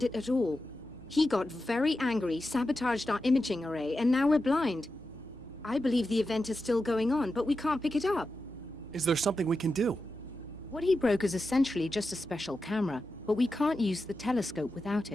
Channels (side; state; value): both; normal; correlation 0.90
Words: it at all. He got very angry, sabotaged our imaging array, and now we're blind. I believe the event is still going on, but we can't pick it up. Is there something we can do? What he broke is essentially just a special camera, but we can't use the telescope without